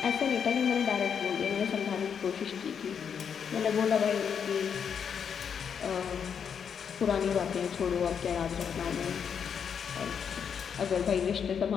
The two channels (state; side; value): quieter; right; 7.3 dB